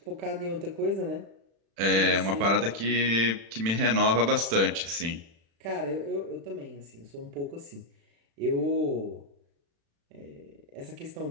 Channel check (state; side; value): late; left; 36 ms